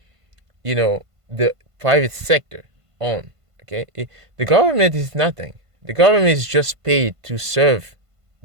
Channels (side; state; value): left; late; 1.5 ms